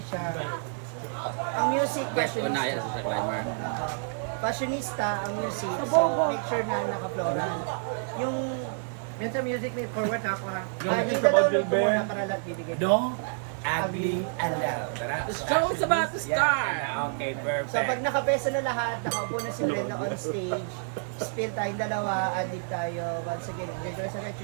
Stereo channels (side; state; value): left; silent; digital silence